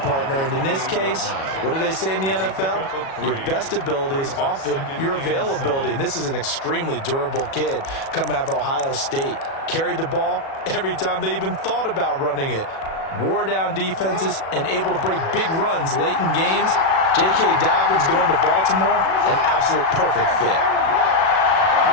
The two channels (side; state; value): right; late; 37 ms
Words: partner. And in this case, what do they say in the NFL? Your best ability is often your availability. And this is an extremely durable kid coming out of Ohio State. Carried the ball every time they even thought about running it. Wore down defenses and able to break big runs late in games. J.K. Dobbins going to Baltimore, an absolute perfect fit.